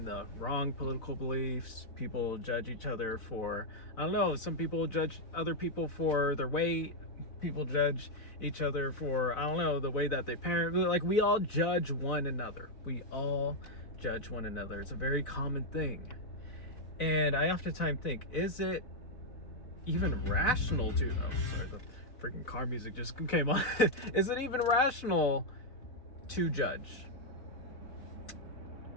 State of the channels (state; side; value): late; right; 4.0 ms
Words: the wrong political beliefs. People judge each other for, I don't know, some people judge other people for their weight. People judge each other for, I don't know, the way that they parent. Like, we all judge one another. We all judge one another. It's a very common thing. And I oftentimes think, is it even rational to, oh, sorry, the freaking car music just came on. Is it even rational to judge?